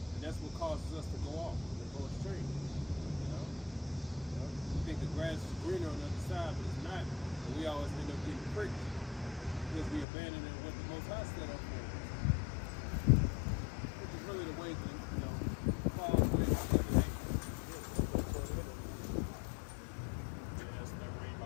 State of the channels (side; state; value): right; drops out; at 10.1 s